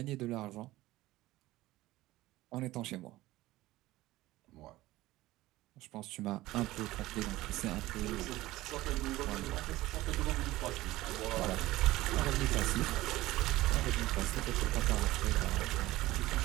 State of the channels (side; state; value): left; quieter; 17.5 dB